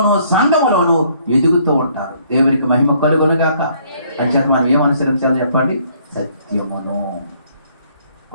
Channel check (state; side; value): inverted; both; correlation -0.64